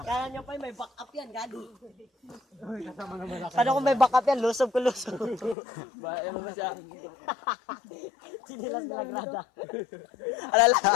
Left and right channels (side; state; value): right; drops out; at 5.6 s